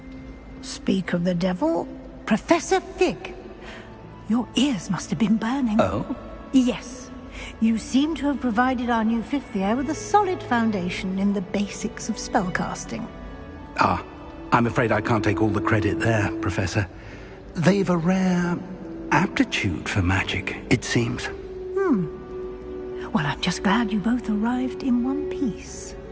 Speak of the devil, Professor Fig. Your ears must have been burning. Oh? Yes. You seem to have provided our new fifth year with a solid foundation in the basics of spellcasting. Ah, I'm afraid I can't take all the credit there, Professor. They've a rare aptitude for magic, it seems. Well, I'm just glad you both arrived in one piece.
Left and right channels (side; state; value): both; identical; correlation 1.00